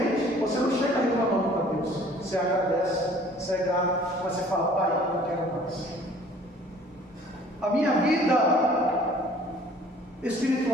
Você não chega reclamando para Deus. Você agradece, você é grato, mas você fala, Pai, eu quero mais. A minha vida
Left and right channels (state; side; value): normal; both; correlation 0.53